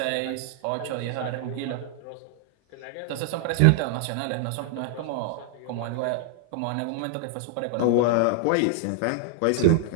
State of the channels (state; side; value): different; both; correlation -0.01